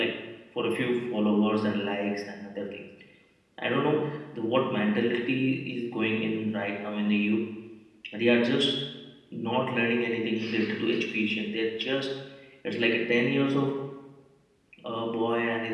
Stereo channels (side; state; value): both; identical; correlation 1.00